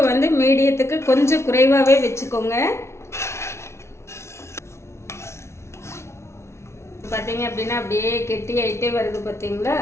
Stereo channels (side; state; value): right; late; 0.13 ms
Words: வந்து மீடியத்துக்கு கொஞ்சம் குறைவாகவே வச்சுக்கோங்க. பார்த்தீங்க அப்படின்னா அப்படியே கெட்டி ஆகிட்டே வருது பார்த்தீங்களா.